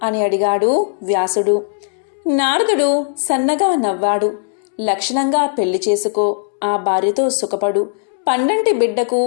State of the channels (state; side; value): silent; right; digital silence